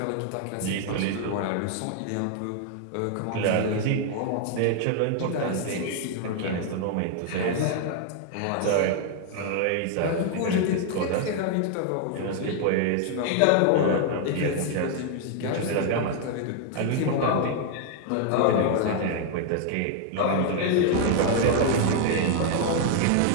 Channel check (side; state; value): both; different; correlation 0.00